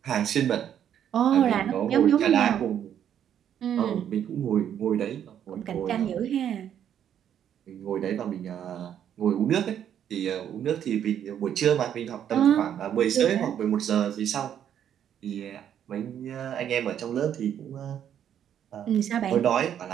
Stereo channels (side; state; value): left; quieter; 9.6 dB